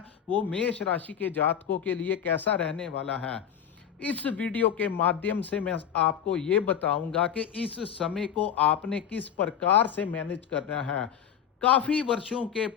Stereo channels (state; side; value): quieter; right; 8.8 dB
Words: वो मेष राशि के जातकों के लिए कैसा रहने वाला है। इस वीडियो के माध्यम से मैं आपको ये बताऊंगा कि इस समय को आपने किस प्रकार से मैनेज करना है। काफी वर्षों के